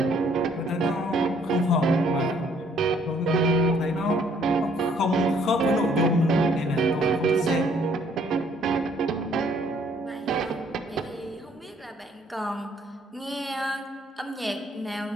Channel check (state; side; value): normal; both; correlation 0.63